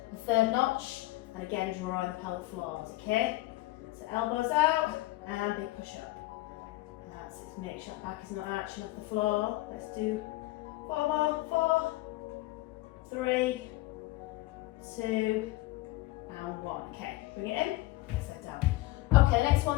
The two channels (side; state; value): right; quieter; 18.8 dB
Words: the third notch, and again, draw the pelvic floors, okay? So elbows out, and big push up. That's it, make sure that back is not arching off the floor. Let's do 4 more, 4, 3, 2, and 1. Okay, bring it in, set down. Okay, next